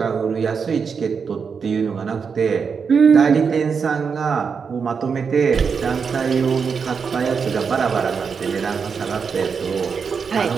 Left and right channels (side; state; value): left; quieter; 5.9 dB